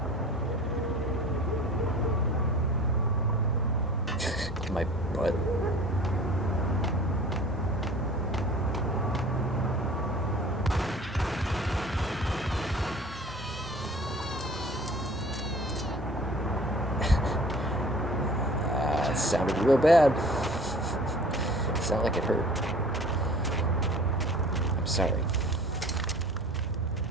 My butt. It sounded real bad. It sounded like it hurt. I'm sorry.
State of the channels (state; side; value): normal; both; correlation 0.45